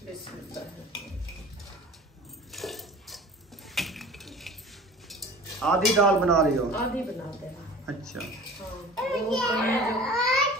बिस्मिल्लाह। आधी दाल बना रही हो? आधी बनाते हैं। अच्छा, हाँ, वो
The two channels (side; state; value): both; normal; correlation 0.42